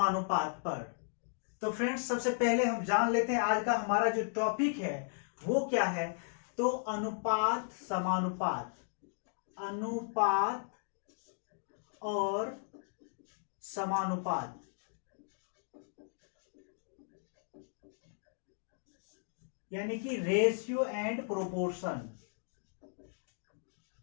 पर। तो फ्रेंड्स, सबसे पहले हम जान लेते हैं आज का हमारा जो टॉपिक है वो क्या है। तो अनुपात समानुपात, अनुपात और समानुपात। यानी कि रेशियो एंड प्रोपोर्शन।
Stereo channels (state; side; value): silent; right; digital silence